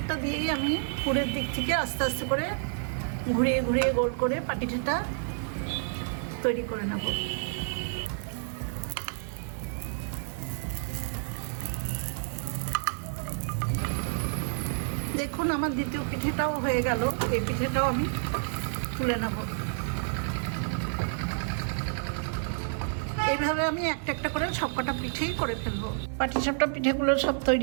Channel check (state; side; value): silent; left; 58 dB below the other